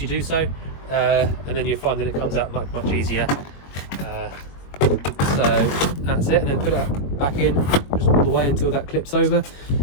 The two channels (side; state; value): right; late; 21 ms